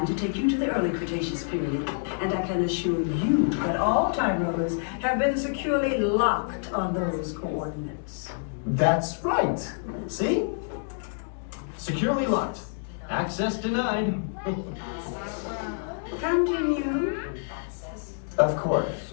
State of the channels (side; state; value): right; silent; digital silence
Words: to take you to the early Cretaceous period, and I can assure you that all time rovers have been securely locked on those coordinates. That's right. See? Securely locked. Access denied. Continue. Of